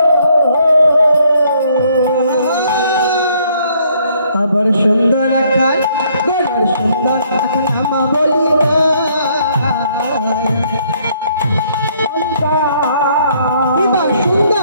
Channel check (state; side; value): inverted; both; correlation -0.66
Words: আবার সুন্দর খান গড়ার সুন্দর খান আমা বলি কিবা